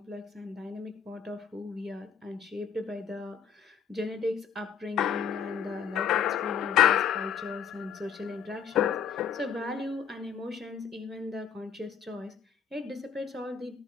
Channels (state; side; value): quieter; right; 7.4 dB